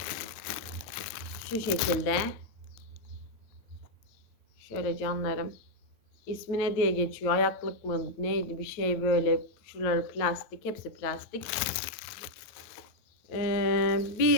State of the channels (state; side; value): late; right; 9.1 ms